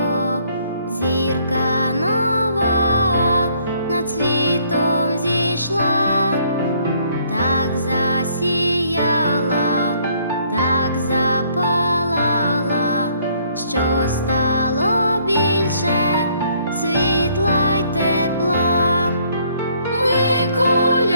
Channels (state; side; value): inverted; both; correlation -0.65